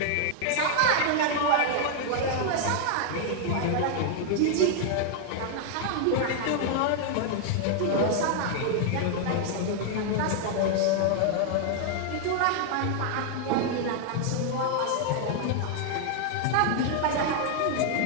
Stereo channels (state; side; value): different; both; correlation 0.00